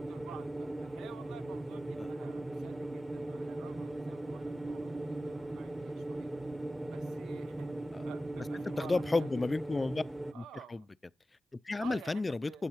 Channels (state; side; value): normal; both; correlation 0.95